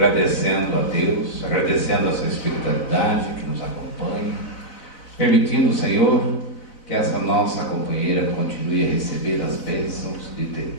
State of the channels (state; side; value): late; right; 4.0 ms